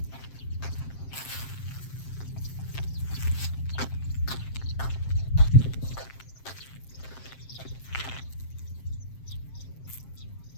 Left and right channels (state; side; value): late; right; 7.6 ms